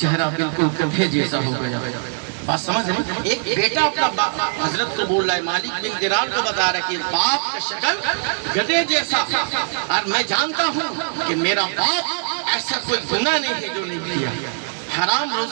بالکل گدھے جیسا ہو گیا۔ بات سمجھ رہے ہیں؟ ایک بیٹا اپنا حضرت کو بول رہا ہے، مالک بن دینار کو بتا رہا ہے کہ باپ کا شکل گدھے جیسا، اور میں جانتا ہوں کہ میرا باپ ایسا کوئی گناہ نہیں ہے جو نہیں کیا، حرام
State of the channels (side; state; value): left; silent; 65 dB below the other